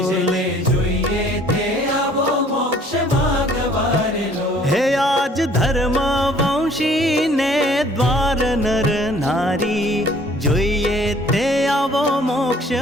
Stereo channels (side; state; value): both; normal; correlation 0.57